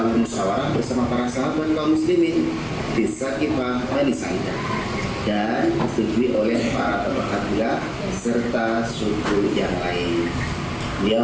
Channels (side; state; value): both; identical; correlation 1.00